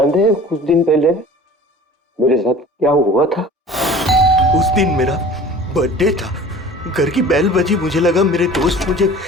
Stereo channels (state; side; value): normal; both; correlation 0.43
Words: हैं कुछ दिन पहले मेरे साथ क्या हुआ था? उस दिन मेरा बर्थडे था, घर की बेल बजी, मुझे लगा मेरे दोस्त मुझे